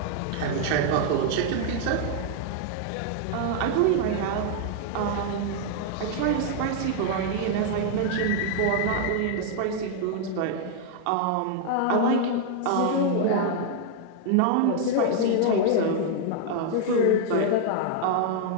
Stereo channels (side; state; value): both; different; correlation 0.00